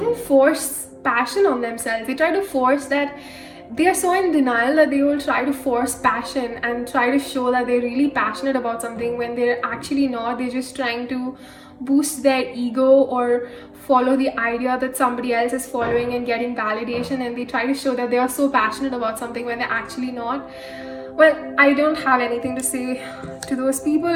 force passion on themselves. They try to force that. They are so in denial that they will try to force passion and try to show that they're really passionate about something when they're actually not. They're just trying to boost their ego or follow the idea that somebody else is following and getting validation, and they try to show that they are so passionate about something when they're actually not. Well, I don't have anything to say to those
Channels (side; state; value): both; identical; correlation 1.00